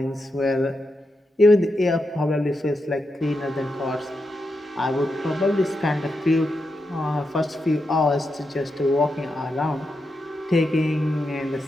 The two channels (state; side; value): normal; both; correlation 0.86